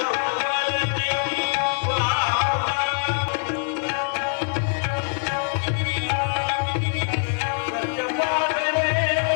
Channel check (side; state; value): right; silent; 61 dB below the other